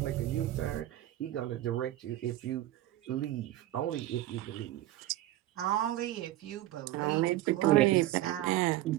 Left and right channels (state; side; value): quieter; left; 14.8 dB